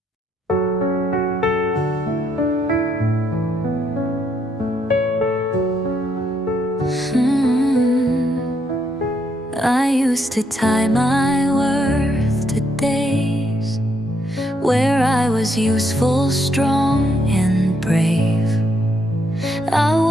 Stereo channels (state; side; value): normal; both; correlation 0.74